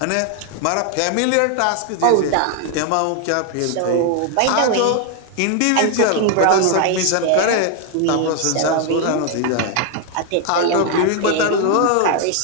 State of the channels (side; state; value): both; different; correlation 0.01